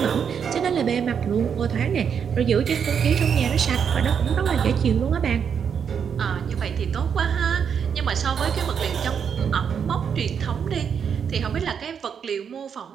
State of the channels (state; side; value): quieter; left; 7.3 dB